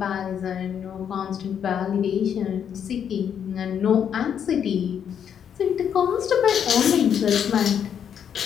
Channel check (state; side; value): quieter; right; 8.4 dB